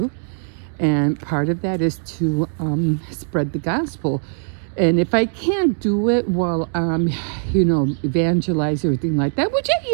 And part of that is to spread the gospel. And if I can't do it while evangelize, everything like that, which I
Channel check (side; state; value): left; silent; 65 dB below the other